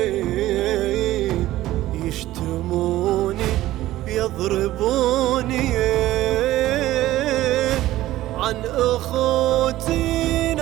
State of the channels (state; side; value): quieter; left; 15.4 dB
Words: يشتموني يضربوني، عن أخوتي